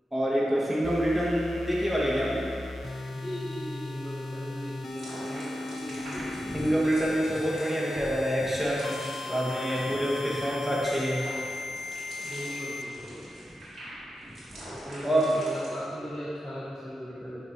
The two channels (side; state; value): both; normal; correlation 0.90